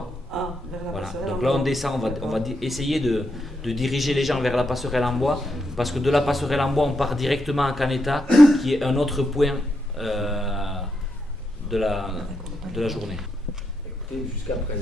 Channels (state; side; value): normal; both; correlation 0.82